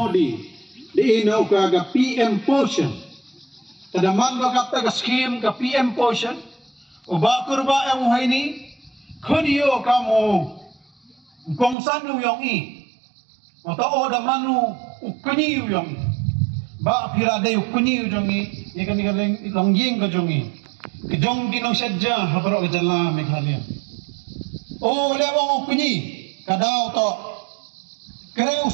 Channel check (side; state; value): left; drops out; at 11.8 s